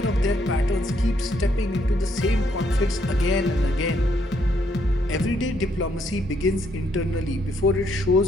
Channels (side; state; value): both; normal; correlation 0.72